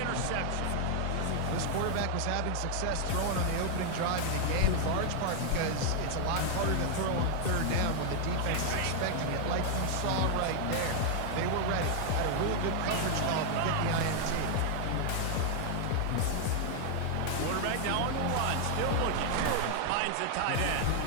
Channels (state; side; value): different; both; correlation 0.00